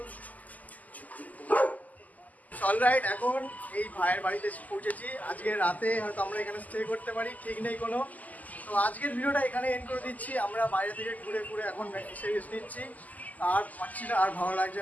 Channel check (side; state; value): right; late; 0.078 ms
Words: অলরাইট, এখন এই ভাইয়ের বাড়িতে এসে পৌঁছেছি। আজকে রাতে হয়তো আমরা এখানে স্টে করতে পারি, ঠিক নেই কোনো। তো আজকের ভিডিওটা এখানে এন্ড করে দিচ্ছি। আমরা বাইরে থেকে ঘুরে ঘুরে এখন এসে রেস্ট নিচ্ছি, আর পাচ্ছি না, আর ভালো লাগছে